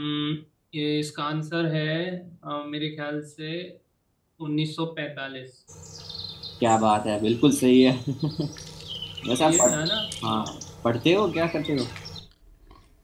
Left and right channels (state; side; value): identical; both; correlation 1.00